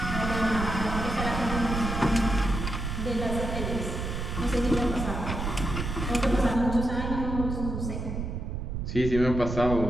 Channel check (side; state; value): right; noise; rumble, 4 dB below the sound